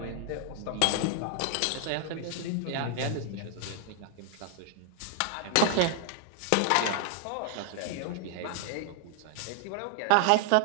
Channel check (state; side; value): different; both; correlation 0.00